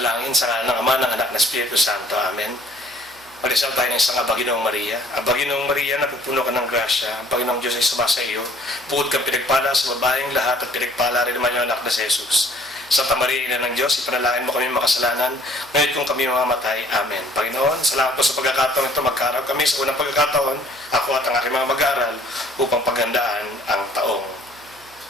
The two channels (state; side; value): noise; right; hum, 28 dB below the sound